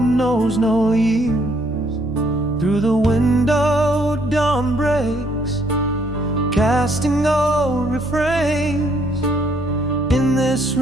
no years. Through the window dawn breaks, casting old refrains. In this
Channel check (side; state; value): both; normal; correlation 0.68